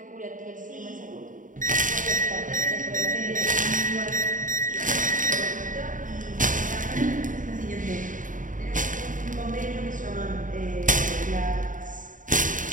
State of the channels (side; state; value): left; late; 0.38 ms